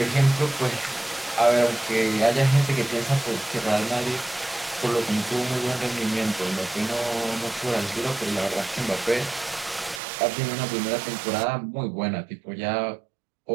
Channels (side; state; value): left; drops out; at 10.0 s